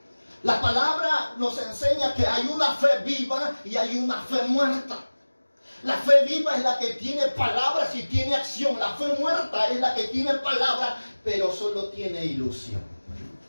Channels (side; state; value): both; inverted; correlation -1.00